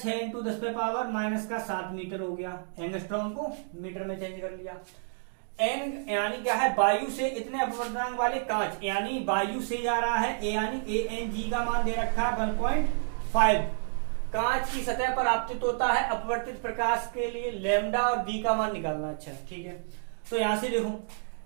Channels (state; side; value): silent; left; digital silence